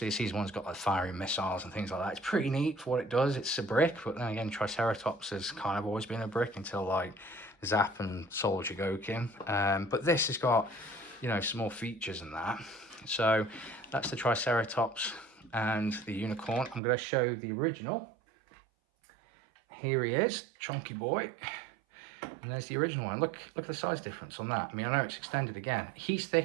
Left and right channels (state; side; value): drops out; left; at 16.8 s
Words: the Season 1's got like firing missiles and things like that. It's pretty neat for what it does. It's a brick, but then again, Triceratops has kind of always been a brick until like Zap and Soul Jigokin. But this has got, you know, some more features than that. So that's the Triceratops and the Unicorn. I'm going to show the original. Here he is, chunky boy. And there's the original one. Look at the size difference on that. I mean, I know it's extended again. He's